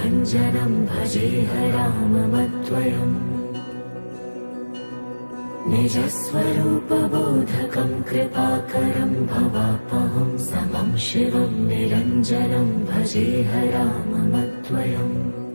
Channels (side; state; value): both; inverted; correlation -1.00